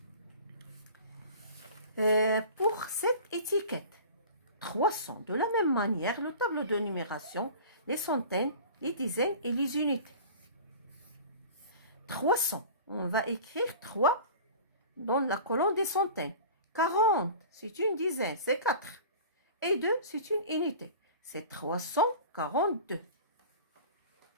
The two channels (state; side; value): inverted; both; correlation -0.39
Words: Pour cette étiquette, 300, de la même manière, le tableau de numération, les centaines, les dizaines et les unités. 300, on va écrire 3 dans la colonne des centaines. 40, c'est une dizaine, c'est 4. Et 2, c'est une unité. C'est 342.